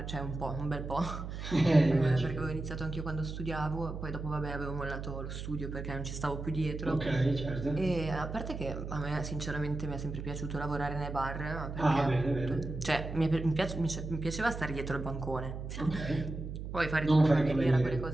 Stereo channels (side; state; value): right; noise; hum, 7 dB below the sound